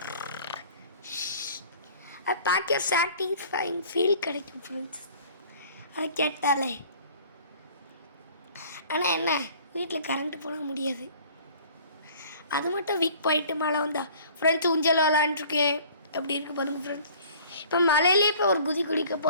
அது பார்க்க சாட்டிஸ்ஃபைங் ஃபீல் கிடைக்கும் ஃப்ரெண்ட்ஸ், அதை கேட்டாலே. ஆனால் என்ன, வீட்டில் கரண்ட்டு போட முடியாது. அது மட்டும் வீக் போயிட்டு மழை வந்தா ஃப்ரெண்ட்ஸ் ஊஞ்சல் விளாண்டுருக்கேன். எப்படி இருக்குது பாருங்க ஃப்ரெண்ட்ஸ். இப்போ மழையிலே இப்போ ஒரு குதி குடிக்க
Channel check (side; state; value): both; inverted; correlation -0.50